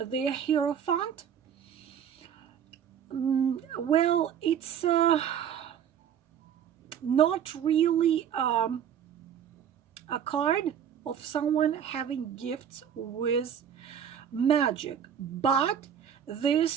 the Hierophant. Well, it's not really a card of someone having gifts with magic, but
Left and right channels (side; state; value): left; quieter; 8.7 dB